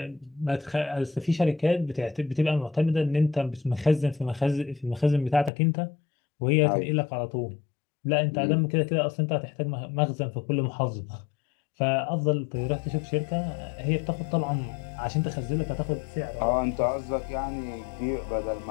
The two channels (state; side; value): drops out; right; at 5.5 s